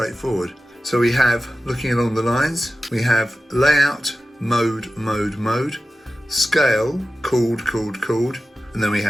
So we have, looking along the lines, we have layout, mode, mode, mode, scale, chord, chord, chord, and then we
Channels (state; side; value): normal; both; correlation 0.94